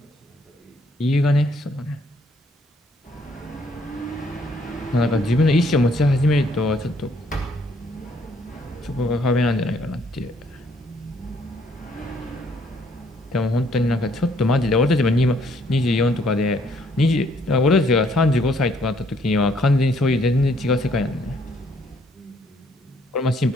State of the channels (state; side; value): normal; both; correlation 0.66